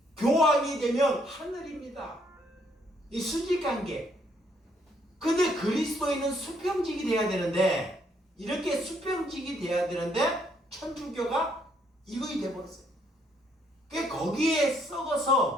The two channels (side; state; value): both; normal; correlation 0.70